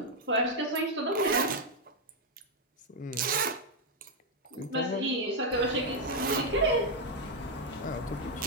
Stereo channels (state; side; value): normal; both; correlation 0.00